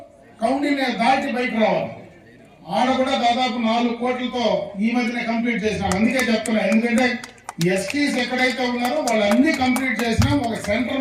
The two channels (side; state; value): both; identical; correlation 1.00